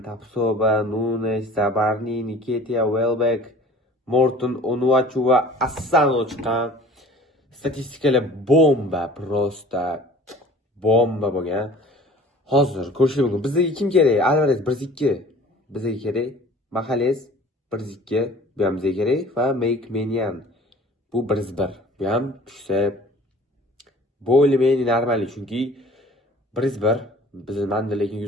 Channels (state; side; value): normal; both; correlation 0.47